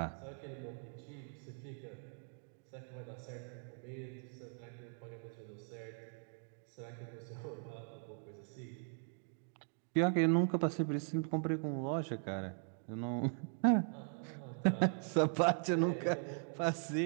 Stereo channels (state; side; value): silent; left; 51 dB below the other